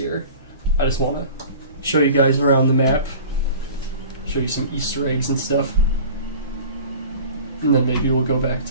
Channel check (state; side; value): inverted; both; correlation -0.41